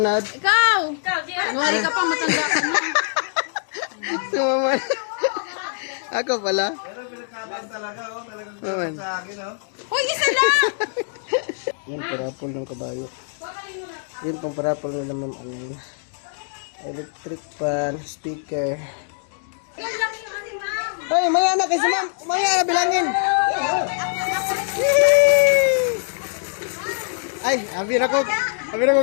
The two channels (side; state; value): right; silent; digital silence